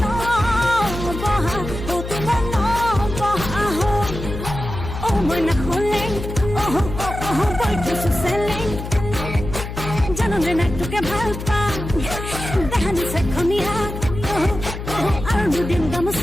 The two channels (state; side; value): noise; left; hum, 8 dB below the sound